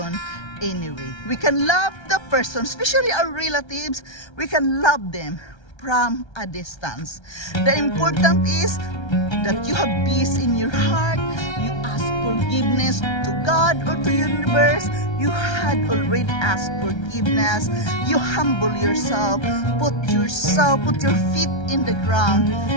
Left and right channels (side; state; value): right; late; 1.3 ms